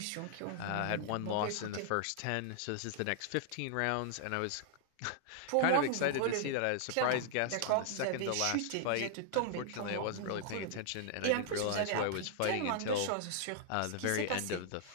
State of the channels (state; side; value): different; both; correlation -0.01